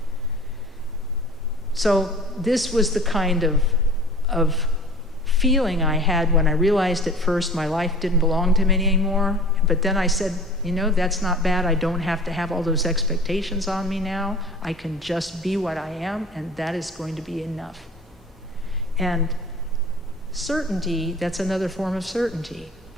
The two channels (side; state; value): both; normal; correlation 0.42